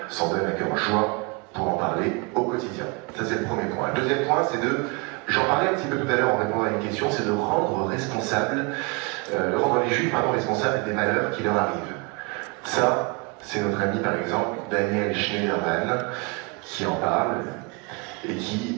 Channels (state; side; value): quieter; left; 30.1 dB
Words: s'en donnent à cœur joie pour en parler au quotidien. Ça, c'est le premier point. Le deuxième point, c'est de, j'en parlais un petit peu tout à l'heure en répondant à une question, c'est de rendre les Juifs responsables des malheurs qui leur arrivent. Ça, c'est notre ami, par exemple, Daniel Schneiderman, qui en parle et